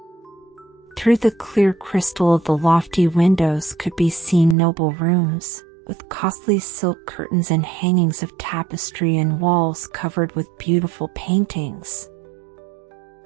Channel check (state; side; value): drops out; left; at 4.5 s